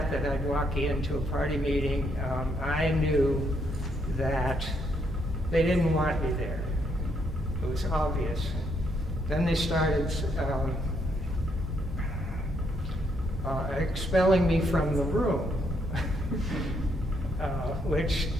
I'd walk into a party meeting, I knew that they didn't want me there. It was obvious. Then they started expelling me from the room, which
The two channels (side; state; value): both; normal; correlation 0.74